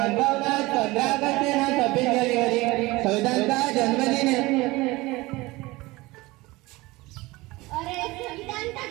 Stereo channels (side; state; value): left; quieter; 21.1 dB